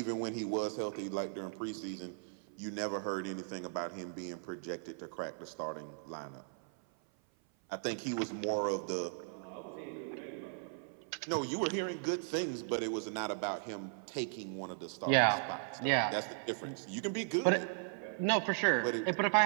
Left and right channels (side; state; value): left; silent; 53 dB below the other